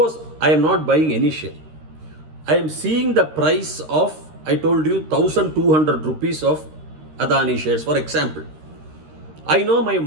I am not buying any share. I am seeing the price of, I told you, 1200 rupees of Adani shares, for example. I know my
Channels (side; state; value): left; late; 13 ms